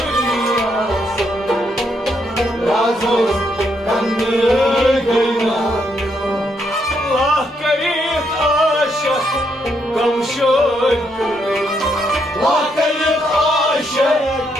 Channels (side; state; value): both; normal; correlation 0.76